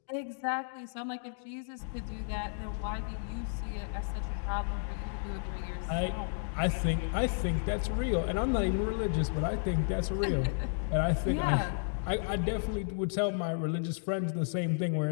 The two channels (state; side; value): silent; right; digital silence